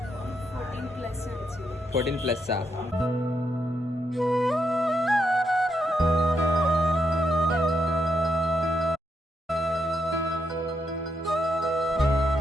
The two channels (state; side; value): normal; both; correlation 0.81